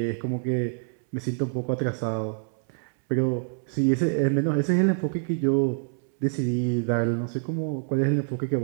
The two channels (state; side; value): silent; left; 61 dB below the other